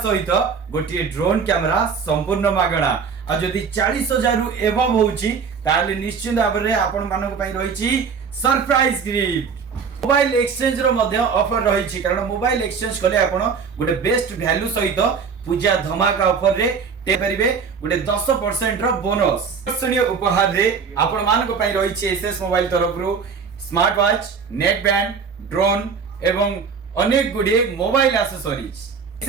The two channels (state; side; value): quieter; left; 5.9 dB